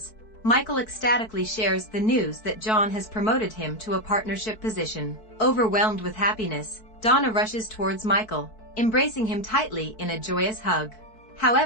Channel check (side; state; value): right; late; 4.6 ms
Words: Michael ecstatically shares the news that John has promoted him to a partnership position. Overwhelmed with happiness, Donna rushes towards Michael, embracing him tightly in a joyous hug.